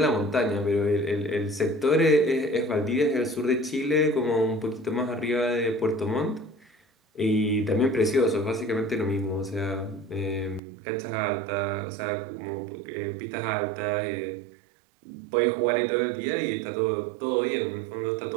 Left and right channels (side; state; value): left; drops out; at 10.6 s